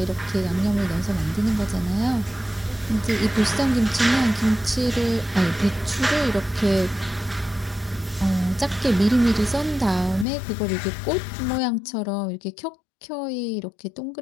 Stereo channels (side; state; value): right; drops out; at 10.2 s